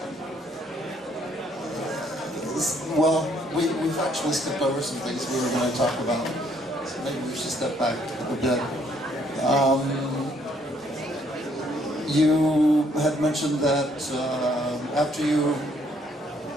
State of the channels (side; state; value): both; normal; correlation 0.67